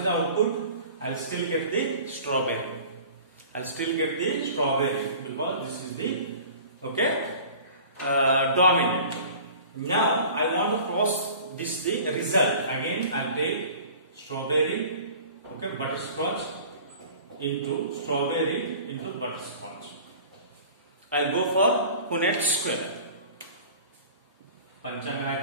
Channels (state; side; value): inverted; both; correlation -0.44